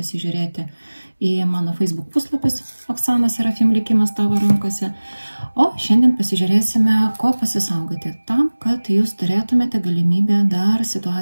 į mano Facebook puslapis Oksana Serafim likimas tavo rankose. O šiandien pasižiūrėsime, ko pasisaugoti tam, kad jūs turėtumėte galimybę dar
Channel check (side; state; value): both; inverted; correlation -1.00